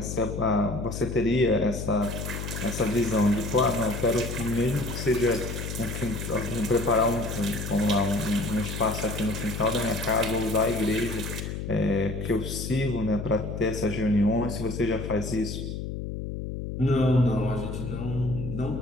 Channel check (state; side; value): noise; left; hum, 5 dB below the sound